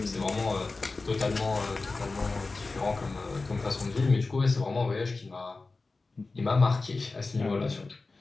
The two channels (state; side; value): quieter; right; 3.7 dB